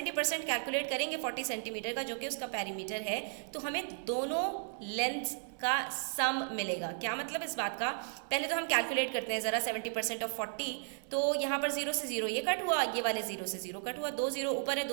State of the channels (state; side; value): silent; left; 55 dB below the other